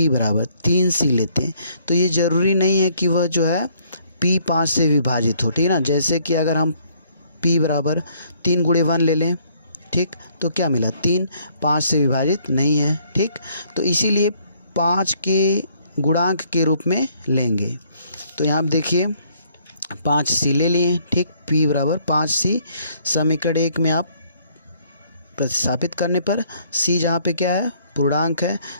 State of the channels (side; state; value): both; inverted; correlation -0.65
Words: बराबर 3C लेते हैं तो ये ज़रूरी नहीं है कि वह जो है P 5 से विभाजित हो, ठीक ना। जैसे कि अगर हम P बराबर 3 गुणे 1 ले लें, ठीक, तो क्या मिला, 3 5 से विभाजित नहीं है, ठीक। तो इसीलिए 5 के गुणांक के रूप में लेंगे। तो यहाँ पे देखिए 5C ले लिए, ठीक। P बराबर 5C समीकरण 1 में आप प्रतिस्थापित करने पर C जहाँ पे क्या है, पूर्णांक है,